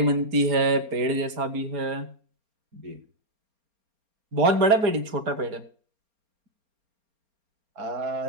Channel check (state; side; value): late; left; 4.3 ms